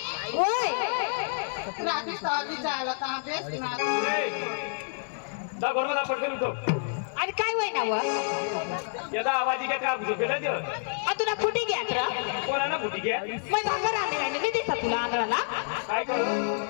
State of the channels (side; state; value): right; silent; digital silence